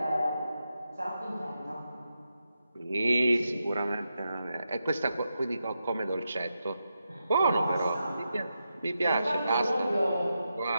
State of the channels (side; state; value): both; inverted; correlation -0.87